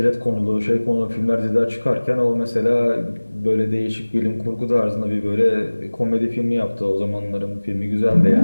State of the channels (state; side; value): inverted; both; correlation -1.00